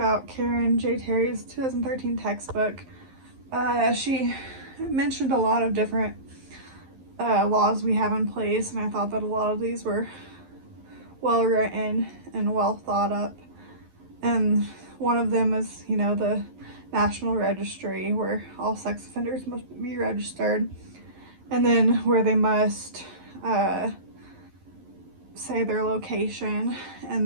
Karen J. Terry's 2013 textbook. She mentioned a lot of different laws we have in place, and I thought that a lot of these were well written and well thought up. And one of them is, the National Registry, where all sex offenders must be registered, and then where they must say their location,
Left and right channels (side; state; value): left; late; 11 ms